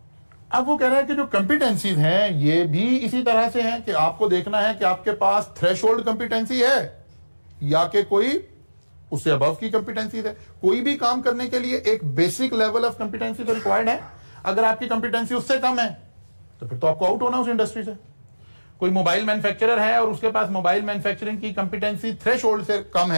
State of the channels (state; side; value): inverted; both; correlation -1.00